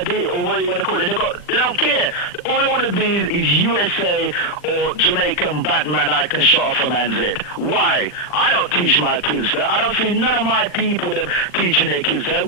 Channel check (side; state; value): right; late; 40 ms